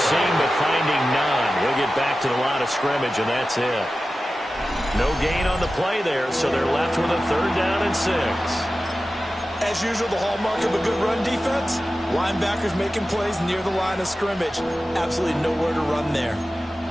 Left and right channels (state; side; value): normal; both; correlation 0.94